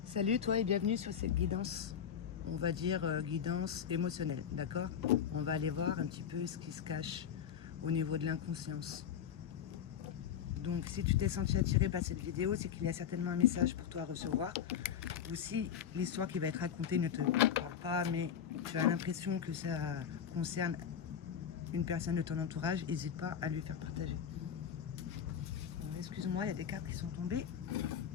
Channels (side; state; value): right; quieter; 8.4 dB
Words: Salut toi et bienvenue sur cette guidance, on va dire guidance émotionnelle, d'accord? On va aller voir un petit peu ce qui se cache au niveau de l'inconscience. Donc si tu t'es senti attiré par cette vidéo, c'est qu'il y a certainement un message pour toi à recevoir. Ou si l'histoire qui va être racontée ne te parle pas, mais tu as l'impression que ça concerne une personne de ton entourage, n'hésite pas à lui faire partager. Bon, excuse-moi, il y a des cartes qui sont tombées